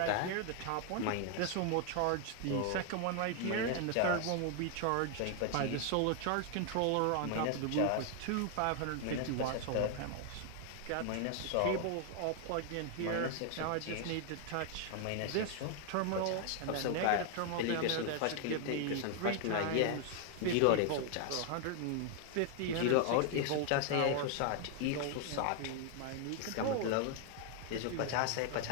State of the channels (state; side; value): different; both; correlation 0.00